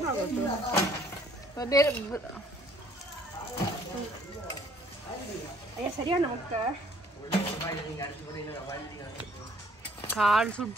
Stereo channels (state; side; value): normal; both; correlation 0.60